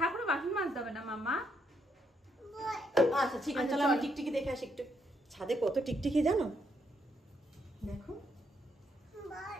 বাসন মাজতে হবে না মামা। আচ্ছা ঠিক আছে, চলো আমি টিকটিকি দেখে আসি একটু। ছাদে কত টিকটিকি জানো? দেখো,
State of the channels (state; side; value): normal; both; correlation 0.75